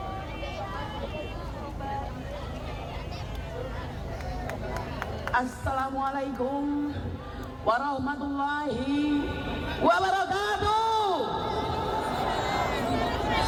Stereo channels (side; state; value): both; identical; correlation 1.00